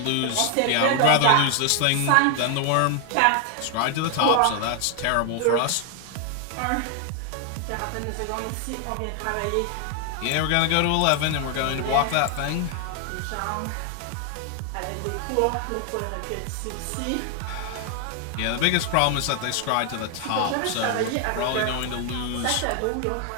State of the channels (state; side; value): different; both; correlation 0.00